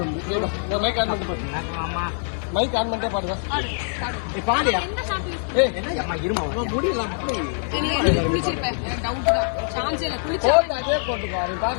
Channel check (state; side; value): silent; right; 63 dB below the other